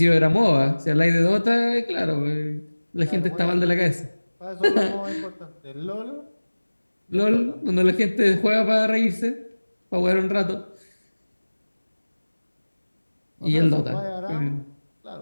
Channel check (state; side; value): inverted; both; correlation -1.00